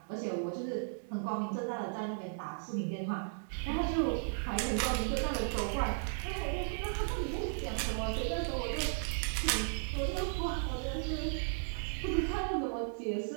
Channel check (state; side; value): silent; left; digital silence